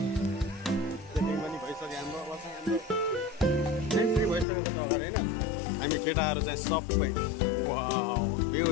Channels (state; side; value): drops out; right; at 4.5 s